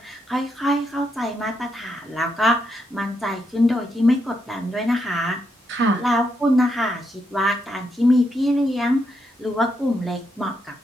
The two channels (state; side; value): normal; both; correlation 0.80